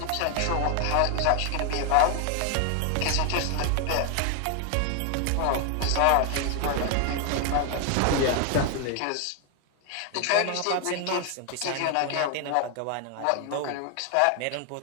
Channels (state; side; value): different; both; correlation 0.00